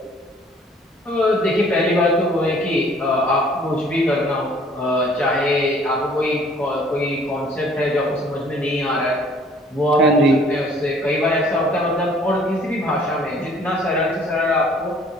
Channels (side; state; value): both; normal; correlation 0.56